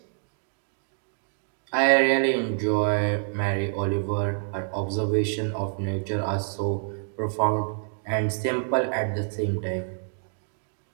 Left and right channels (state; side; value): silent; left; 60 dB below the other